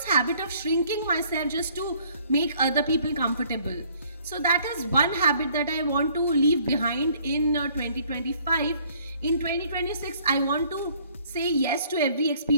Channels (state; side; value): inverted; both; correlation -0.60